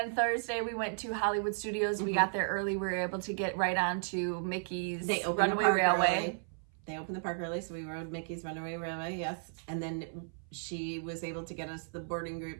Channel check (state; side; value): silent; left; 55 dB below the other